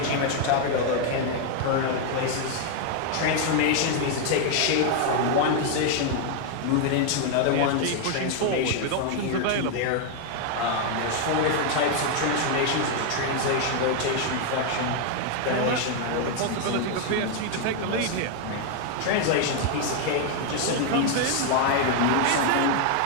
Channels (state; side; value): different; both; correlation 0.01